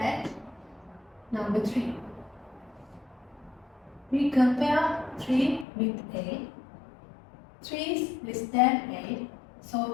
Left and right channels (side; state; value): right; drops out; at 5.7 s